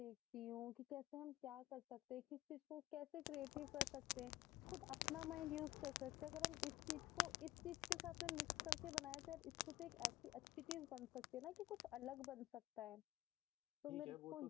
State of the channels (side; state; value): right; quieter; 16.8 dB